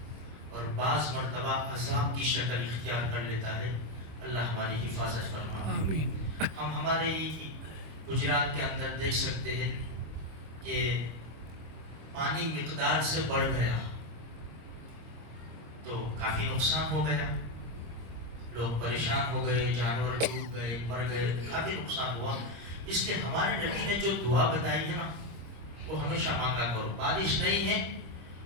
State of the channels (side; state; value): left; late; 26 ms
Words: اور بعض مرتبہ عذاب کی شکل اختیار کر لیتا ہے۔ اللہ ہماری حفاظت فرمائے آمین۔ ہم ہمارے گجرات کے اندر دیکھ سکتے ہیں کہ پانی مقدار سے بڑھ گیا تو کافی نقصان ہو گیا، لوگ پریشان ہو گئے، جانور ڈوب گئے، مر گئے، کافی نقصان ہوا۔ اس لیے ہمارے نبی نے جو دعا بتائی ہے نا، وہ ہمیشہ مانگا کرو۔ بارش نہیں ہے،